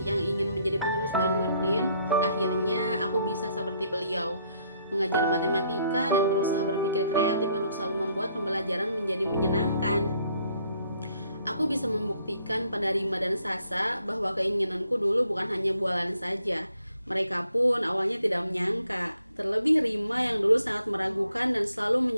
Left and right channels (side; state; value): both; inverted; correlation -0.69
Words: yang ingin menjadi penerus Pak Nurdin, akhirnya aku bisa seperti beliau, mengajar matematika dan berusaha berpikir kreatif untuk selalu membuat pembelajaran menjadi menyenangkan. Aku bisa membuktikan pada Rima dan Sasa bahwa keinginanku dulu bukan hanya bualan saja. Mereka pun awalnya tidak menyangka, terlebih Rima yang dulu sangat meragukan dan selalu